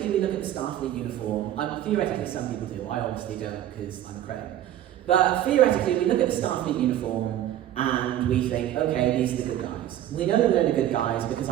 we look at the Starfleet uniform. Theoretically, some people do. I obviously don't because I'm a credit. But theoretically, we look at the Starfleet uniform and we think, okay, these are the good guys. We know that they're the good guys because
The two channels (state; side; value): quieter; left; 12.1 dB